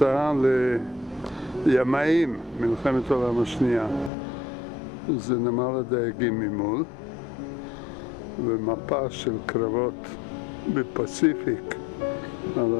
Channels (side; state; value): right; drops out; at 4.1 s